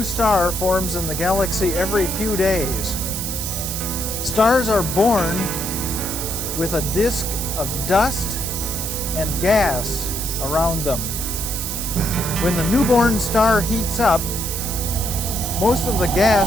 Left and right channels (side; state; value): right; noise; hiss, 4 dB below the sound